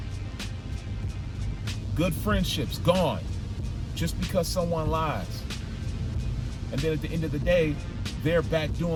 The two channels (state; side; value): identical; both; correlation 1.00